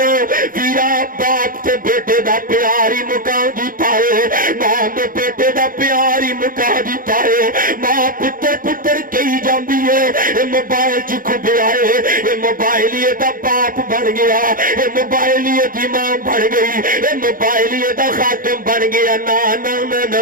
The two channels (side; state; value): left; late; 0.40 ms